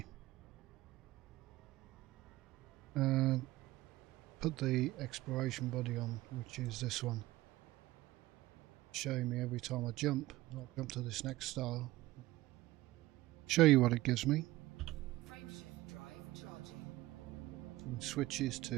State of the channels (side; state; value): left; quieter; 17.6 dB